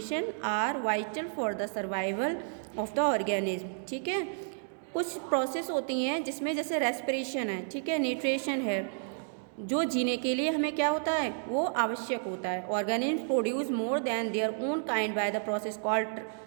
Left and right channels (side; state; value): left; silent; digital silence